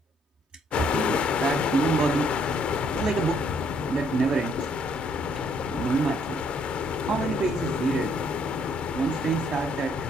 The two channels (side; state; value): both; normal; correlation 0.67